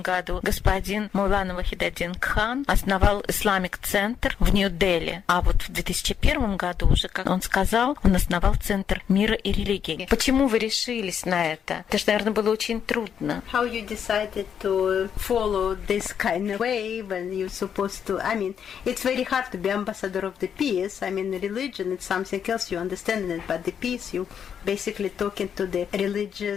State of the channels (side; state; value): right; quieter; 8.1 dB